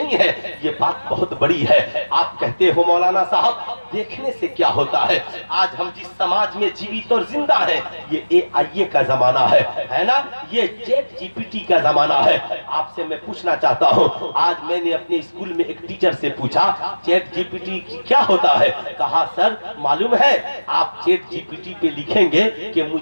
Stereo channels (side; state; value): both; inverted; correlation -1.00